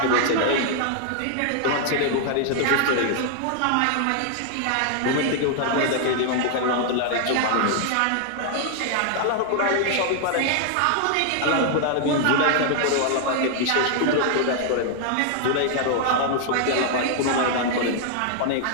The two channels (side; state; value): both; different; correlation 0.00